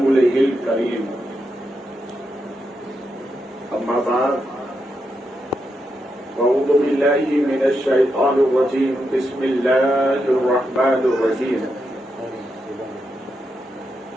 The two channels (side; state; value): both; normal; correlation 0.84